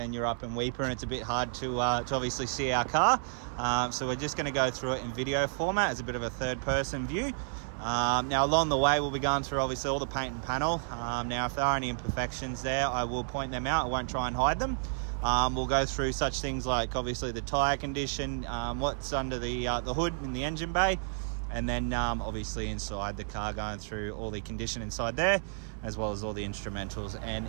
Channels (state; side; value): silent; left; 57 dB below the other